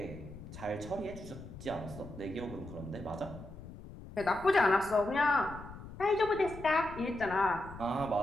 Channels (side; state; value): left; noise; rumble, 14 dB below the sound